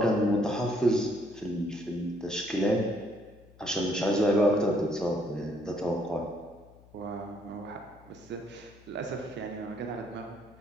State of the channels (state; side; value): noise; left; hum, 25 dB below the sound